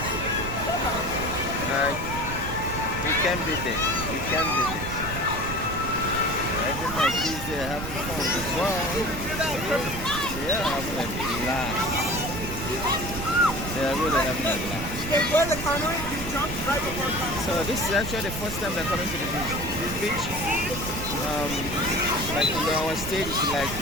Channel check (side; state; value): right; noise; rumble, 7 dB below the sound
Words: you can't beat it, you can't beat it. Everyone like these, they're having fun as well. They're having a blast. They're really having a blast. So this is actually the first time they're coming to this beach. Like in our state, it's like